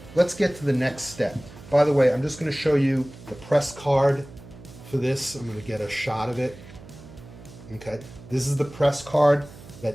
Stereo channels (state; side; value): noise; right; hum, 18 dB below the sound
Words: let's get to the next step. By the way, I'm just going to show you the press card for this. I'm going to get a shot of it. Okay, this is the press card